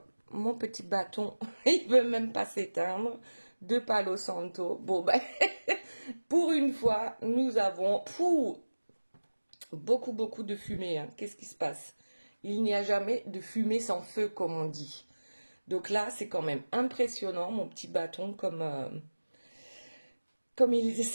mon petit bâton. Il ne veut même pas s'éteindre. De Palo Santo. Bon, ben, pour une fois, nous avons beaucoup de fumée. Hein. Qu'est-ce qui se passe? Il n'y a jamais de fumée sans feu, comme on dit. Donc là, c'est quand même impressionnant, mon petit bâton, comme il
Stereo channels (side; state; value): both; inverted; correlation -1.00